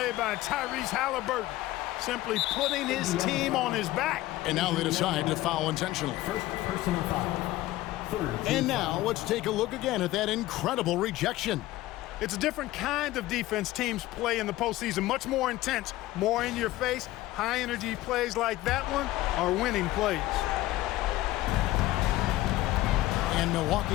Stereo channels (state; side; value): quieter; right; 16.6 dB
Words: by Tyrese Halliburton. Simply putting his team on his back. And now they decide to foul intentionally. First personal foul. And now let's take a look again at that incredible rejection. It's a different kind of defense teams play in the postseason. Much more intense, more in your face. High-energy plays like that one are winning plays. And